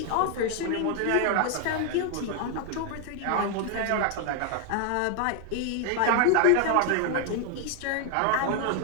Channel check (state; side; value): different; both; correlation 0.00